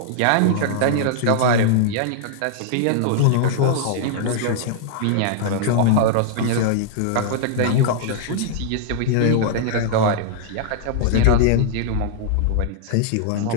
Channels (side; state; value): both; different; correlation -0.01